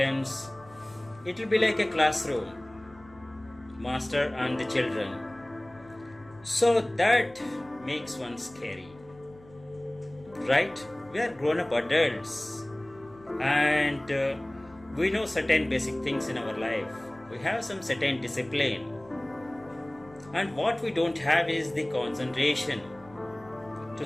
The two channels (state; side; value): noise; left; hum, 24 dB below the sound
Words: It will be like a classroom, master and the children. So that makes one scary, right? We are grown up adults, and we know certain basic things in our life. We have some certain discipline, and what we don't have is the concentration to